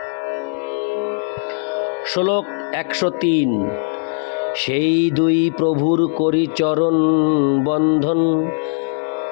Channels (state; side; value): silent; right; 66 dB below the other